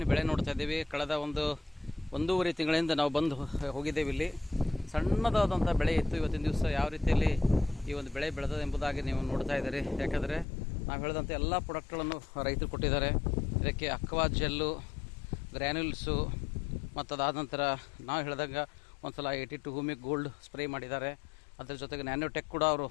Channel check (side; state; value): right; drops out; at 10.5 s